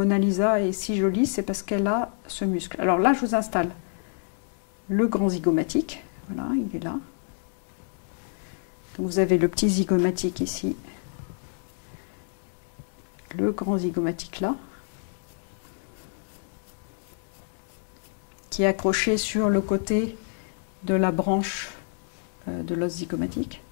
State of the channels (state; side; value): silent; right; digital silence